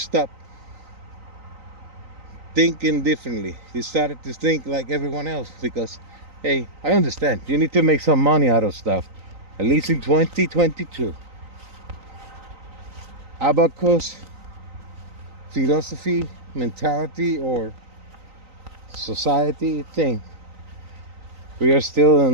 thinking differently. You started to think like everyone else because, hey, I understand you need to make some money out of stuff, at least in 2022. Abacus philosophy, mentality, or society thing. We are still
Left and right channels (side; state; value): left; late; 3.9 ms